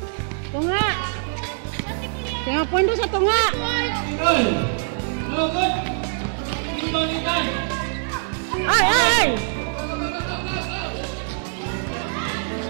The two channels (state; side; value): silent; left; 63 dB below the other